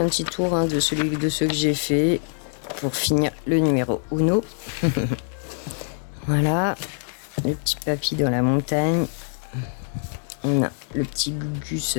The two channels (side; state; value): right; silent; 63 dB below the other